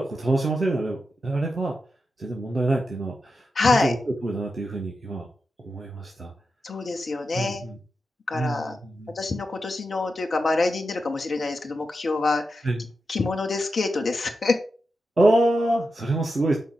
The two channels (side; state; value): both; normal; correlation 0.89